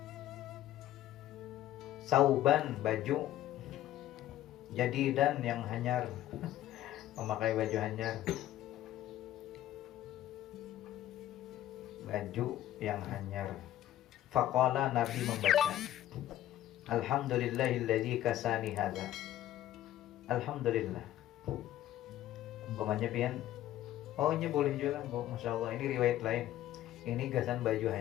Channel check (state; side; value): quieter; right; 13.3 dB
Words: Sauban baju. Jadi dan yang hanyar. Memakai baju hanyar. Baju yang hanyar. Faqala, Nabi membaca, Alhamdulillahilladzi kasani hadza. Alhamdulillah. Umpamanya pian, oh ini boleh juga, Masya Allah, ini riwayat lain. Ini gasan baju